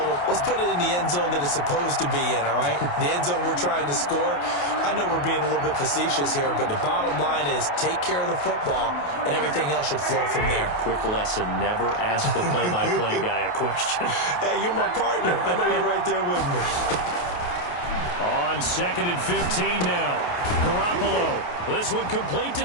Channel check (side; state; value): right; late; 28 ms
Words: him, let's put it in the end zone that it's supposed to be in, all right? The end zone we're trying to score. I know we're being a little bit facetious here, but the bottom line is take care of the football, and everything else should flow from there. Quick lesson, never ask the play-by-play guy a question. Hey, you're my partner. I know you're right there with me. On 2nd and 15 now. Garoppolo. This one complete to